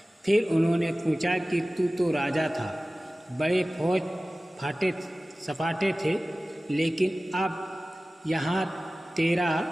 फिर उन्होंने पूछा कि तू तो राजा था, बड़े फौज सपाटे थे, लेकिन अब यहाँ तेरा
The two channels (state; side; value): normal; both; correlation 0.97